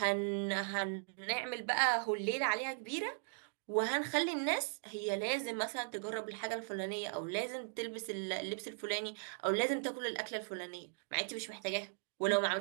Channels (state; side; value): silent; left; digital silence